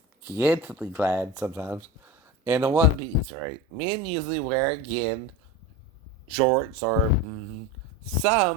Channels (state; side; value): normal; both; correlation 0.27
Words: scantily clad sometimes, and a one-piece, right? Men usually wear, again, shorts, or